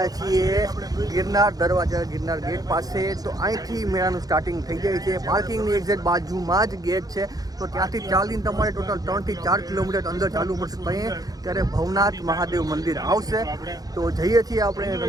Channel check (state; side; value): late; left; 0.18 ms